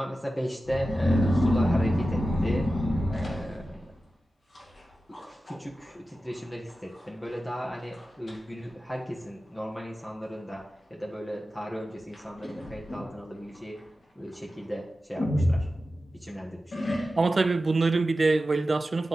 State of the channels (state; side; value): normal; both; correlation 0.93